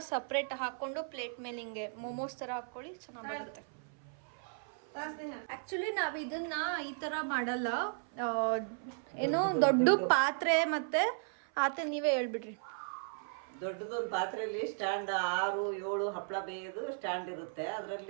ಸಪ್ರೇಟ್ ಹಾಕೊಂಡು ಪ್ಲೇಟ್ ಮೇಲೆ ಹಿಂಗೆ ಮೋಮೋಸ್ ತರ ಹಾಕೊಳ್ಳಿ, ಚೆನ್ನಾಗಿ ಬರುತ್ತೆ. ಆಕ್ಚುಲಿ ನಾವ್ ಇದನ್ನ ಈ ತರ ಮಾಡಲ್ಲ. ಏನು ದೊಡ್ಡ ಪಾತ್ರೆ ಮತ್ತೆ ಆತ ನೀವೇ ಹೇಳ್ಬಿಡ್ರಿ. ದೊಡ್ಡದೊಂದು ಪಾತ್ರೆಯಲ್ಲಿ ಸ್ಟ್ಯಾಂಡ್ 6-7 ಹಪ್ಪಳ ಬೇಯೋದು ಸ್ಟ್ಯಾಂಡ್ ಇರುತ್ತೆ.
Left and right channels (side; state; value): left; silent; 54 dB below the other